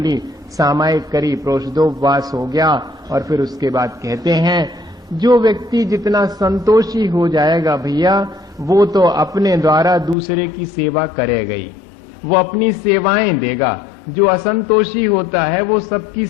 सामायिक करी, प्रोषदोपवास हो गया। और फिर उसके बाद कहते हैं जो व्यक्ति जितना संतोषी हो जाएगा भैया, वो तो अपने द्वारा दूसरे की सेवा करेगा ही, वो अपनी सेवाएं देगा। जो असंतोषी होता है वो सबकी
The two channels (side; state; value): right; drops out; at 10.2 s